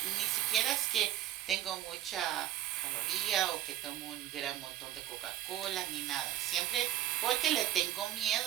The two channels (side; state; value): left; quieter; 12.9 dB